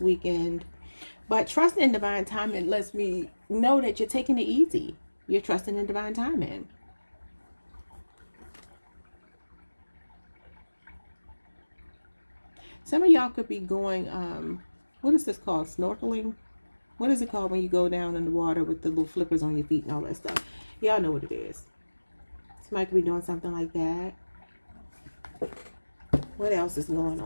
But trusting in divine timing lets me know that you're taking it easy. You're trusting in divine timing. Some of y'all could be going, what is this called? Snorkeling? What is it called when you go down in the water with the little flippers on your feet and all that stuff? Y'all know what it is. Somebody could be doing something like that. What else is going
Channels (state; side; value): inverted; both; correlation -1.00